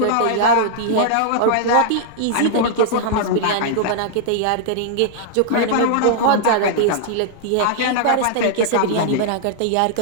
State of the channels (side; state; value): both; different; correlation -0.01